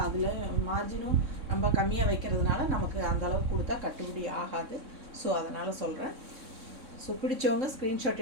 அதில் மார்ஜினும் நம்ம கம்மியாக வைக்கிறதுனால நமக்கு அந்தளவுக்கு கொடுத்தா கட்டுப்படி ஆகாது. ஸோ அதனால் சொல்கிறேன். ஸோ பிடிச்சவங்க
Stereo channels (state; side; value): late; left; 3.6 ms